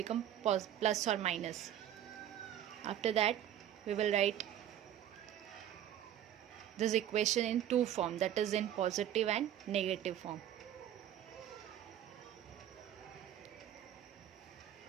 plus or minus. After that we will write this equation in two form, that is in positive and negative form.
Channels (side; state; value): left; quieter; 10.9 dB